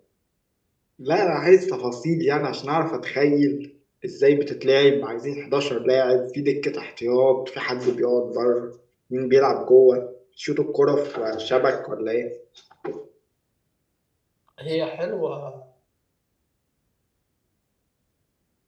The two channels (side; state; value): both; identical; correlation 1.00